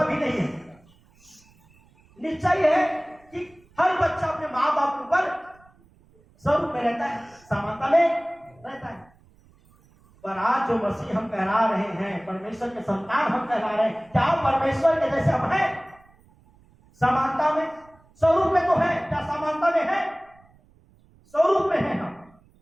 भी नहीं है। निश्चय है कि हर बच्चा अपने माँ बाप के ऊपर स्वरूप में रहता है, समानता में रहता है। पर आज जो मसीह हम कहला रहे हैं, परमेश्वर के संतान हम कहला रहे हैं, क्या परमेश्वर के जैसे हम हैं? समानता में, स्वरूप में तो है, क्या समानता में है? स्वरूप में है हम,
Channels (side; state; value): right; noise; rumble, 30 dB below the sound